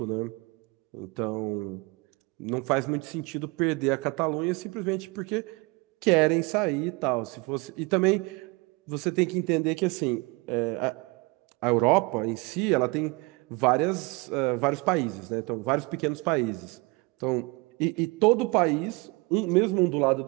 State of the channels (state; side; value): quieter; left; 27.0 dB